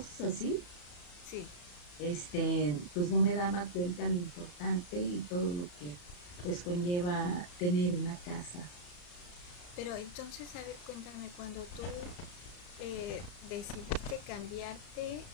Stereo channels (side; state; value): right; late; 34 ms